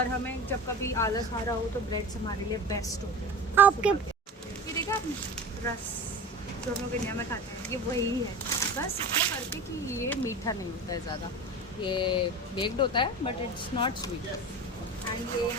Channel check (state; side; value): normal; both; correlation 0.32